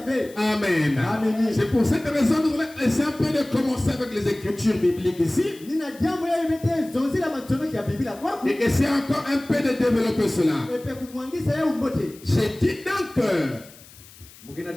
Amen. C'est pour cette raison que nous voulons essayer un peu de commencer avec les Écritures bibliques ici. Et essayer encore un peu de développer cela. J'ai dit donc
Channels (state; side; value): noise; left; hiss, 22 dB below the sound